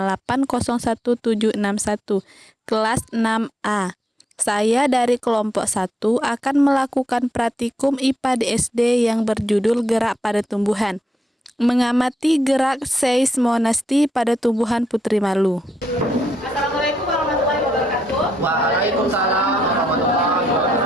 kelas 6A. Saya dari kelompok 1 akan melakukan praktikum IPA di SD yang berjudul Gerak pada Tumbuhan, mengamati gerak seismonasti pada tumbuhan putri malu. Assalamualaikum warahmatullahi wabarakatuh. Waalaikumsalam warahmatullahi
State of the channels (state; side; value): normal; both; correlation 0.80